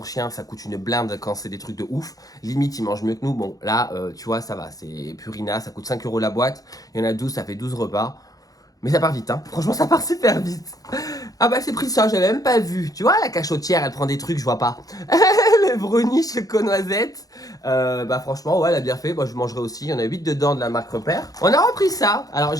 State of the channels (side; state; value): right; late; 0.17 ms